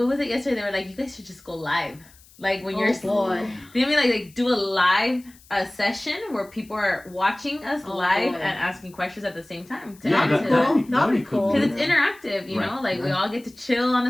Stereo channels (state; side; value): noise; left; hiss, 26 dB below the sound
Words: was it yesterday? They were like, you guys should just go live. Like when you're boy. they mean like do a live session where people are watching us live boy. and asking questions at the same time. To Yeah, add That'd to be that. cool. That'd be cool. Because it's Yeah. interactive, you Right. know, like we Right. all get to chill on